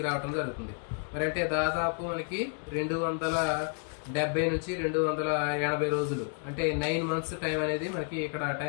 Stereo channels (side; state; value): right; quieter; 37.2 dB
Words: రావడం జరుగుతుంది. మరి అంటే దాదాపు మనకి 270 నుంచి 280 రోజులు అంటే 9 months టైం అనేది మనకి ఇక్కడ